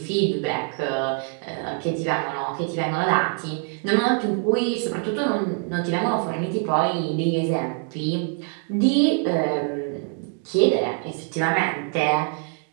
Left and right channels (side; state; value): left; quieter; 40.0 dB